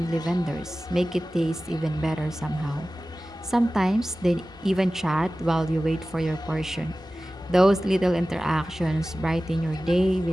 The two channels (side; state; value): both; normal; correlation 0.96